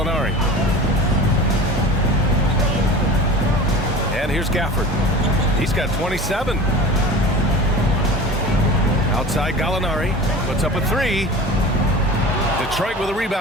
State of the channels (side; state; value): both; normal; correlation 0.36